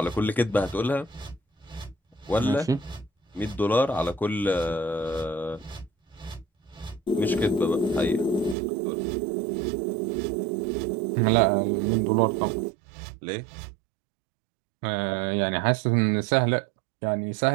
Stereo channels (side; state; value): left; drops out; at 8.6 s